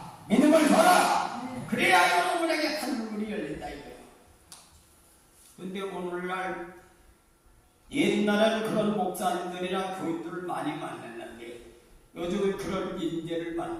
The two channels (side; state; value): both; identical; correlation 1.00